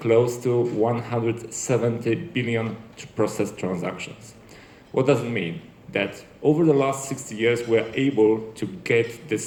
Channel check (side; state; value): both; identical; correlation 1.00